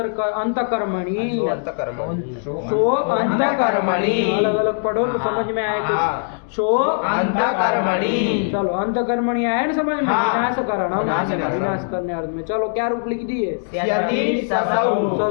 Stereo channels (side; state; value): right; silent; digital silence